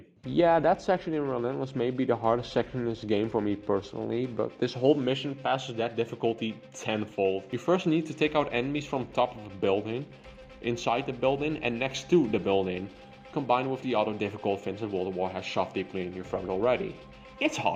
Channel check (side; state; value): both; identical; correlation 1.00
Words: Yeah, that section in Relentless may be the hardest section in this game for me personally, but this whole mission passes that difficulty tenfold. You first need to take out enemies from top of a building, inside the building and next to the building, combined with the other difficult things that World War has shoved deeply in your throat already. It's